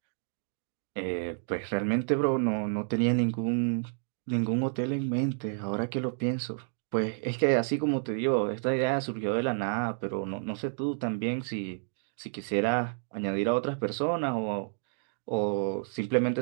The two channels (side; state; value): left; silent; digital silence